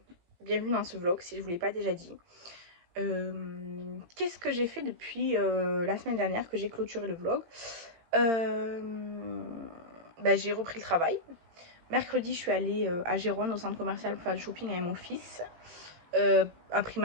bienvenue dans ce vlog si je vous l'ai pas déjà dit. Qu'est-ce que j'ai fait depuis la semaine dernière que j'ai clôturé le vlog? J'ai repris le travail. Mercredi, je suis allée à Gérone, au centre commercial, pour faire du shopping avec mon fils. À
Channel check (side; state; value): left; late; 18 ms